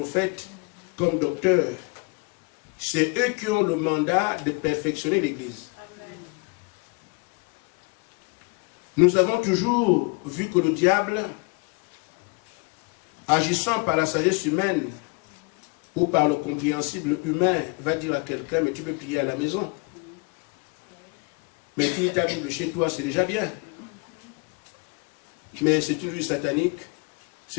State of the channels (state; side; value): quieter; right; 31.0 dB